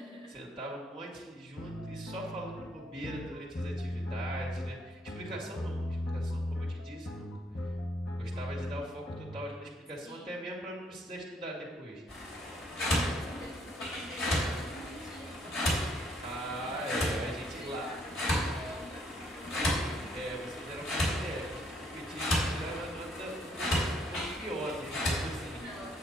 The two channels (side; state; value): both; normal; correlation 0.69